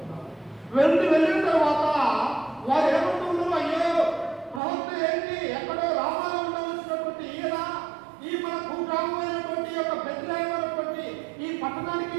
వెళ్ళిన తర్వాత వారు ఏమంటున్నారు, అయ్యో ప్రవక్త ఏంటి ఎక్కడో రామాలో ఉండవలసినటువంటి ఈయన ఈ మన భూగ్రామమైనటువంటి యొక్క బెత్లెహేము అనేటువంటి ఈ పట్టణానికి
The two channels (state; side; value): drops out; left; at 4.6 s